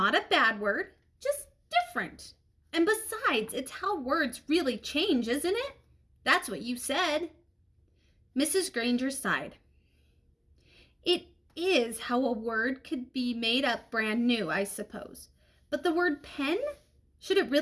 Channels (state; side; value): identical; both; correlation 1.00